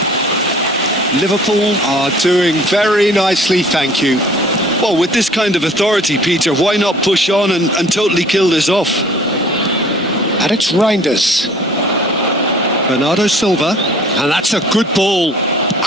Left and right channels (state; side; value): normal; both; correlation 0.51